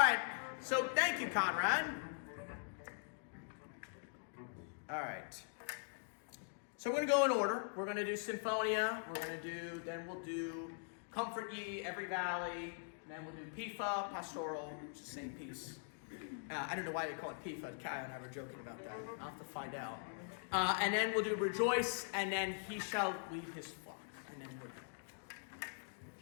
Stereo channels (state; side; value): silent; right; digital silence